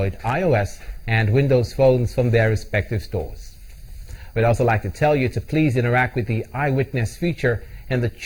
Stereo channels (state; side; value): identical; both; correlation 1.00